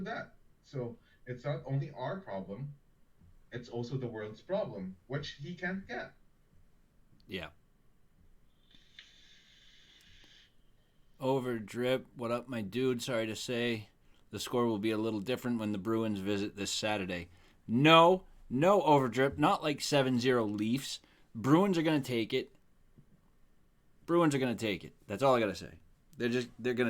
that. So it's not only our problem, it's also the world's problem, which he can't get. Yeah. Over drip. What up, my dude? Sorry to say, the score will be a little different when the Bruins visit this Saturday. No, no overdrip. Not like 7-0 Leafs. Bruins are going to take it. Bruins are going to take it. That's all I got to say. They're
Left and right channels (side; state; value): both; identical; correlation 1.00